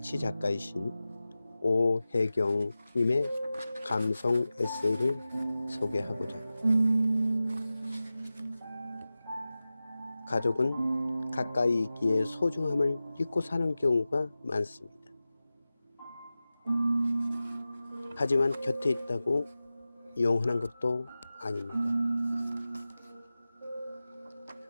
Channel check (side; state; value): both; inverted; correlation -0.95